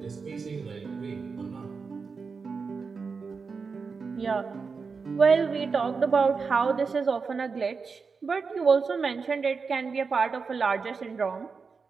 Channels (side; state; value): left; quieter; 5.0 dB